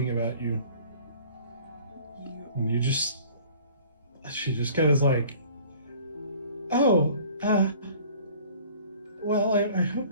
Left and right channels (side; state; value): both; inverted; correlation -0.50